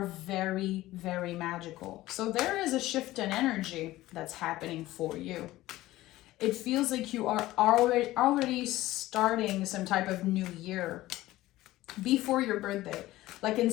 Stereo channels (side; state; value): right; quieter; 16.6 dB